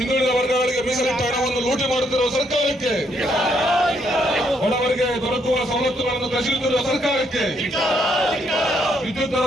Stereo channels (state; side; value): normal; both; correlation 0.73